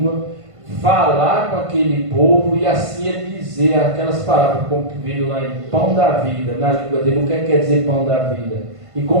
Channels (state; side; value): late; left; 1.5 ms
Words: falar com aquele povo e assim ele dizer aquelas palavras, como veio lá em pão da vida, na língua dele, o que quer dizer pão da vida? E